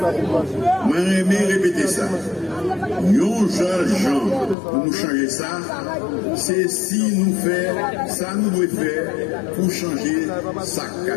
Moi, j'aime répéter ça. Yon jeunes gens pour nous changer ça, c'est si nous faisons ça, nous devons faire pour changer ça qu'a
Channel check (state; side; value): drops out; right; at 4.5 s